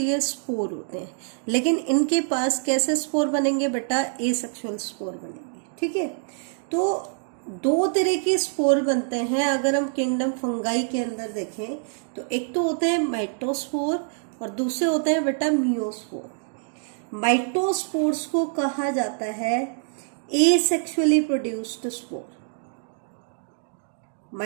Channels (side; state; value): left; silent; digital silence